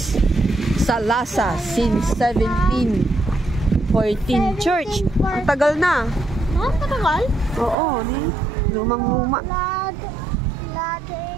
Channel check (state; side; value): drops out; left; at 7.8 s